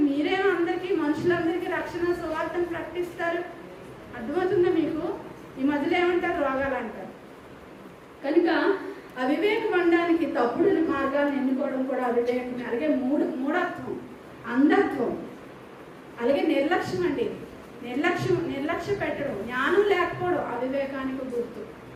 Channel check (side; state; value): both; identical; correlation 1.00